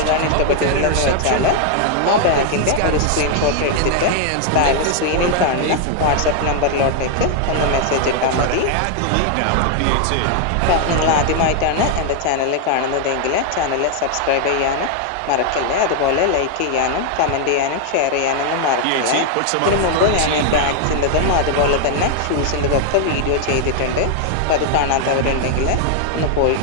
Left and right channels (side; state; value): both; different; correlation 0.00